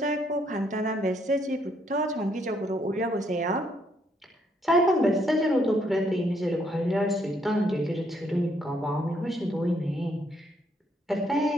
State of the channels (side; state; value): both; normal; correlation 0.72